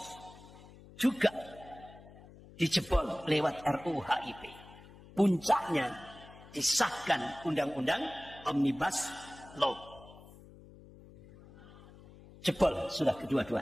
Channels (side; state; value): left; noise; hum, 20 dB below the sound